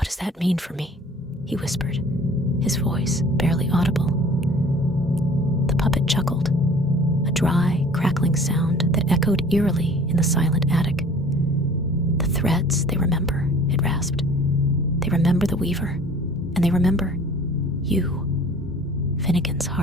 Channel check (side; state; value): both; normal; correlation 0.49